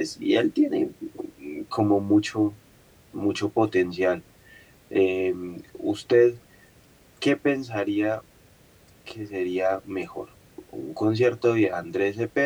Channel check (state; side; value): identical; both; correlation 1.00